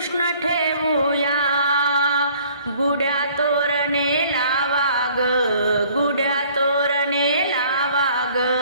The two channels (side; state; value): both; inverted; correlation -0.56